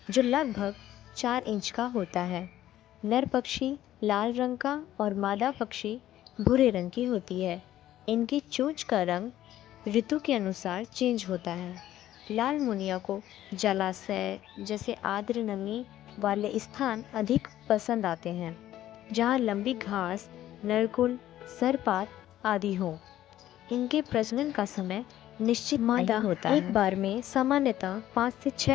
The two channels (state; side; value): quieter; right; 13.1 dB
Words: जो लगभग 4 इंच का होता है। नर पक्षी लाल रंग का और मादा पक्षी भूरे रंग की होती है। इनकी चोंच का रंग ऋतु के अनुसार चेंज होता है। लाल मुनिया को जलाशय जैसे आर्द्र नमी वाले स्थान अधिक पसंद आते हैं, जहाँ लंबी घास, नरकुल, सरपात आदि हो। इनके प्रजनन का समय निश्चित मादा होता है। एक बार में सामान्यतः 5 से